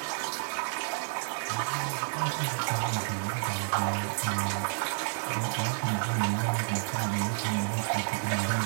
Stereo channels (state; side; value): silent; left; 56 dB below the other